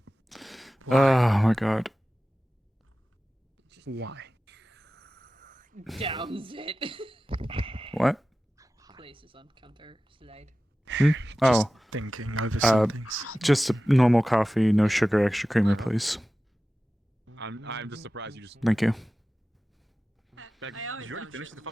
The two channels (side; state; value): both; normal; correlation 0.95